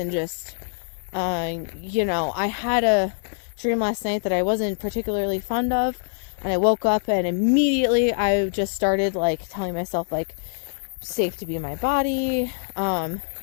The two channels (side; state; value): right; silent; digital silence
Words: just, I had a dream last night that I wasn't particularly fond of, and I woke up and immediately I just started like telling myself like, safe to be in my body.